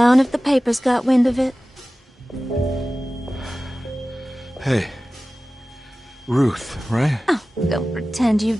if the papers got wind of it. Hey. Ruth, right? Oh, don't pretend you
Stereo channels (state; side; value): normal; both; correlation 0.96